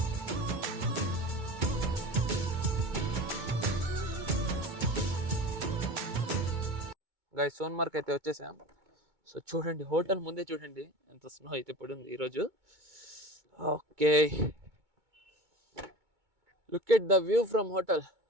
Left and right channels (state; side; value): late; left; 2.2 ms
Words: గైస్, సోన్మార్గ్ అయితే వచ్చేసాం. సో చూడండి, హోటల్ ముందే చూడండి ఎంత స్నో అయితే పడింది ఈరోజు. Okay, look at the view from hotel.